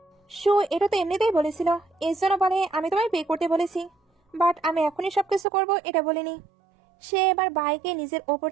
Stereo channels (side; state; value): left; drops out; at 5.5 s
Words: সু এটা তো এমনিতেই বলেছিল, এর জন্য বলে আমি তোমায় পে করতে বলেছি, বাট আমি এখনই সবকিছু করবো এটা বলিনি। সে এবার বাইকে নিজের ওপর